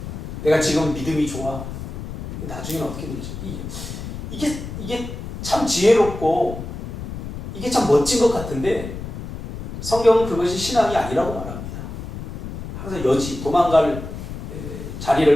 내가 지금 믿음이 좋아. 나중에는 어떻게 될지. 이게 참 지혜롭고 이게 참 멋진 것 같은데 성경은 그것이 신앙이 아니라고 말합니다. 항상 여지, 도망갈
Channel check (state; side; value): noise; left; rumble, 8 dB below the sound